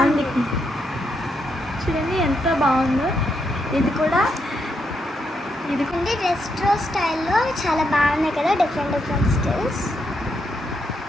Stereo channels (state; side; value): normal; both; correlation 0.80